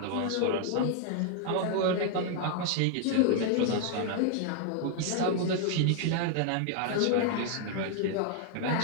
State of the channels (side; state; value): both; different; correlation 0.00